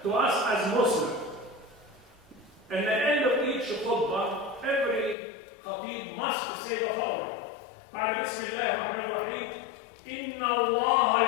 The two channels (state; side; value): drops out; right; at 5.2 s